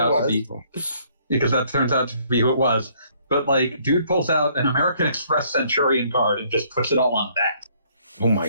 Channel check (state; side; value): inverted; both; correlation -0.64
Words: to was. be, because that turns out to be who it was. But like, dude pulls out an American Express Centurion card and just puts it all on that. Oh